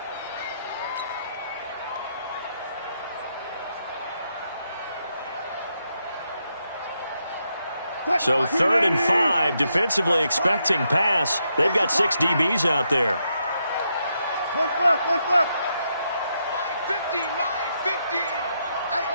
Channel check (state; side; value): inverted; both; correlation -0.80